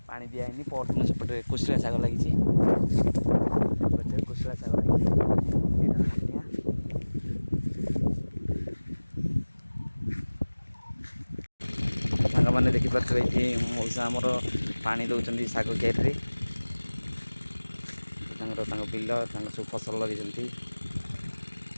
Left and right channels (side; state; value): both; inverted; correlation -1.00